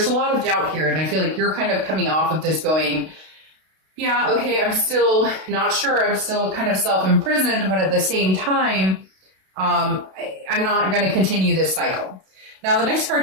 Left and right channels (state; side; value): late; left; 32 ms